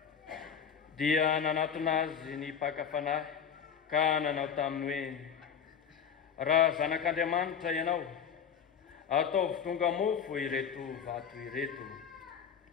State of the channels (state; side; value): quieter; right; 7.5 dB